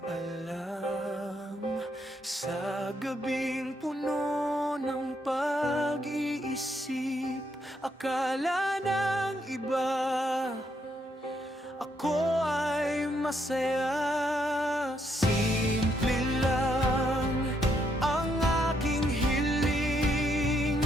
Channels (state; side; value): normal; both; correlation 0.75